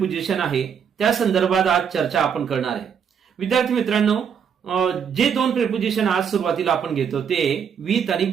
आहे त्या संदर्भात आज चर्चा आपण करणार आहे. विद्यार्थी मित्रांनो, जे दोन प्रेपोजिशन आज सुरुवातीला आपण घेतो ते विथ आणि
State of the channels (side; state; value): left; quieter; 7.4 dB